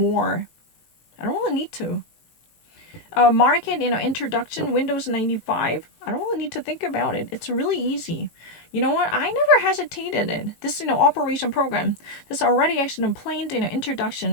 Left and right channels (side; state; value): right; late; 18 ms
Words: I don't really need to. Market, introduction, Windows 95. I don't really need to think about it. It's really easy. You know what? I never hesitated in this, operation program. This already actually planned